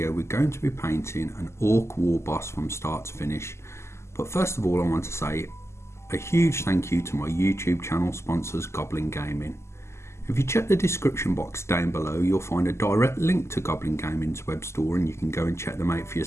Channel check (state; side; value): late; right; 0.13 ms